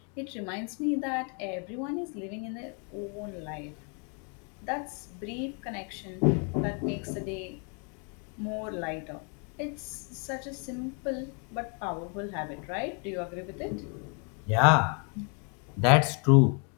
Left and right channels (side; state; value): right; quieter; 38.2 dB